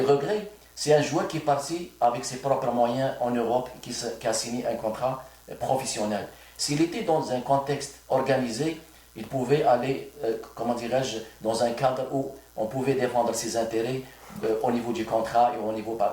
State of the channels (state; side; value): identical; both; correlation 1.00